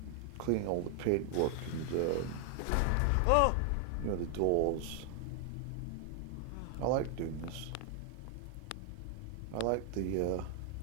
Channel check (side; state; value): both; different; correlation 0.00